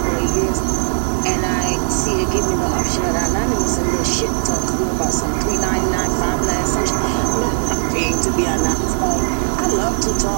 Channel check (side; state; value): left; silent; digital silence